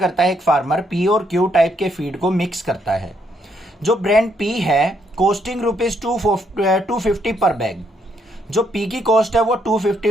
है एक फार्मर पी और क्यू टाइप के फीड को मिक्स करता है। जो ब्रांड पी है कॉस्टिंग रुपीज 250 पर बैग। जो पी की कॉस्ट है वो 250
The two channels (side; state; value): both; normal; correlation 0.73